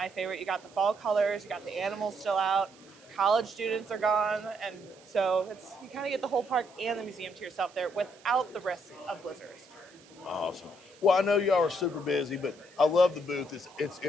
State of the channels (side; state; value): right; noise; hiss, 25 dB below the sound